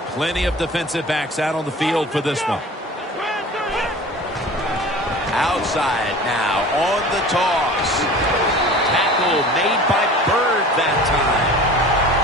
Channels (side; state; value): both; normal; correlation 0.40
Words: Plenty of defensive backs out on the field for this one. Outside now on the toss. Tackle made by Bird that time.